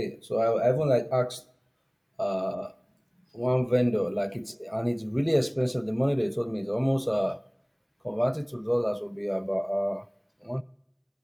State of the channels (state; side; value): identical; both; correlation 1.00